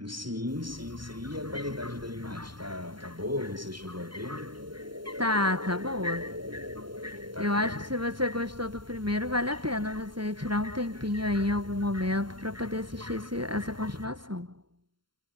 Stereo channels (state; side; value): late; left; 0.72 ms